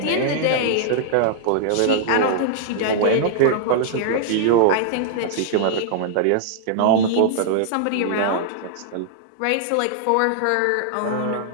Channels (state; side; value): different; both; correlation -0.01